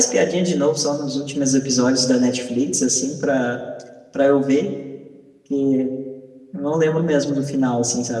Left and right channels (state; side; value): identical; both; correlation 1.00